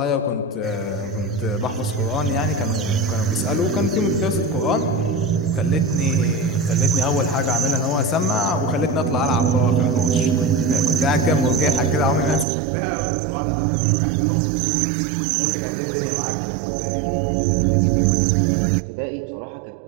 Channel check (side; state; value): left; drops out; at 12.5 s